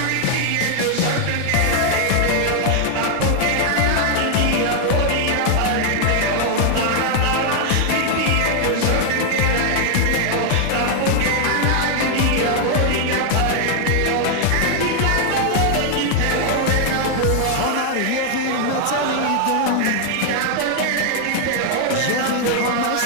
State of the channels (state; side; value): different; both; correlation 0.00